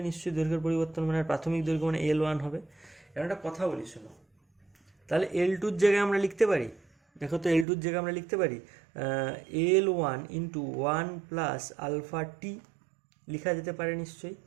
নিশ্চয়ই দৈর্ঘ্যের পরিবর্তন মানে প্রাথমিক দৈর্ঘ্য মানে L1 হবে। এর একটা কথা বলি শোনো, তাহলে L2-র জায়গায় আমরা লিখতে পারি, দেখো তো L2-র জায়গায় আমরা লিখতে পারি L1 ইন্টু 1 প্লাস আলফা টি, লেখা যেতে পারে নিশ্চয়ই।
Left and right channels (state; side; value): drops out; left; at 7.7 s